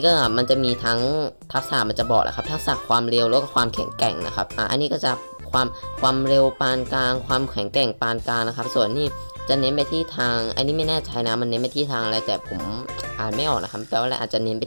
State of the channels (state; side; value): inverted; both; correlation -1.00